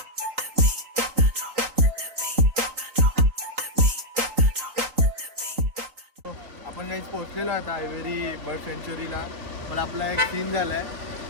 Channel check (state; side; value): late; left; 3.8 ms